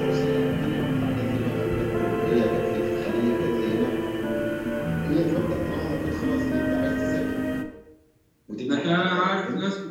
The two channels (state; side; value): identical; both; correlation 1.00